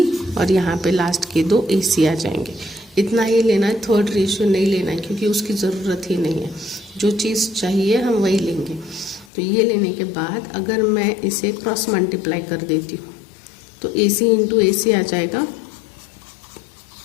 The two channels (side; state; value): right; drops out; at 9.3 s